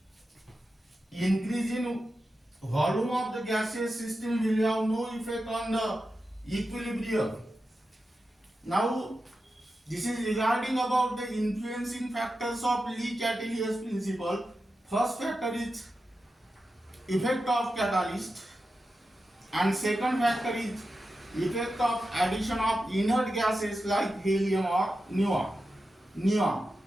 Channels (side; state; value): both; normal; correlation 0.91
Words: increase in volume of the gaseous system will have no effect on the equilibrium. Now this is regarding about the influencing factors of Le-Chatelier's principle. First factor is effect of catalyst, and second factor is effect of addition of inert gases like helium or neon.